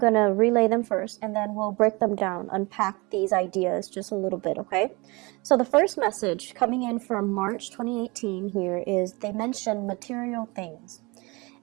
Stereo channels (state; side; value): quieter; left; 26.0 dB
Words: to relay them first, and then we'll break them down, unpack these ideas just a little bit, okay? So the first message coming in from March 2018 here is they mention material things.